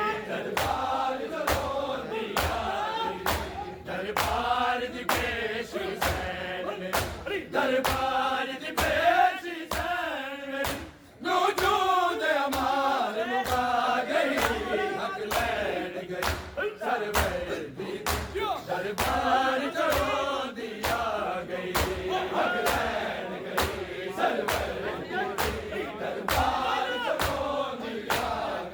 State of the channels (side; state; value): both; identical; correlation 1.00